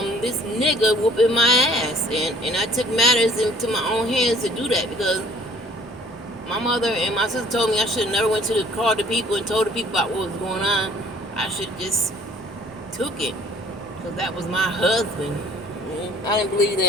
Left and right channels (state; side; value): normal; both; correlation 0.55